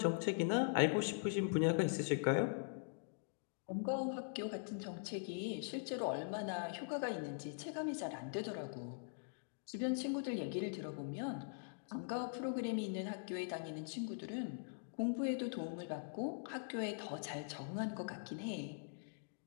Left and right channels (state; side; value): silent; right; digital silence